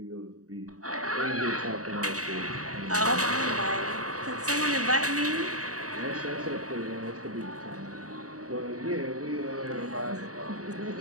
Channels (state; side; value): late; left; 0.66 ms